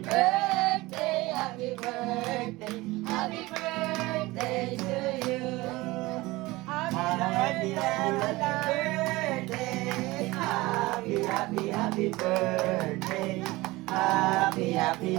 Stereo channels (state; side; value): quieter; left; 20.6 dB